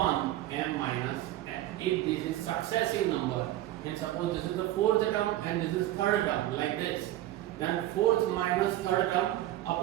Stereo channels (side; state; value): left; quieter; 14.6 dB